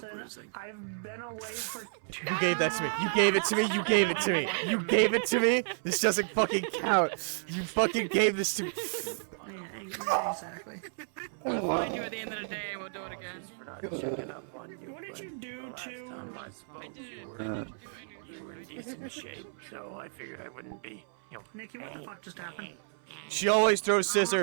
losing. I've been away for... You gave that to me. You gave it to me. You gave it to me. You gave it to me. This doesn't fucking count. You fucking gave this to me. Yeah, exactly. We'll find you at the end of the day and we'll do it again. What did you do to... You were in decent shape, so I figured I wouldn't be, you know... Nikki, what the fuck just happened? She always throws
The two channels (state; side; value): silent; left; 56 dB below the other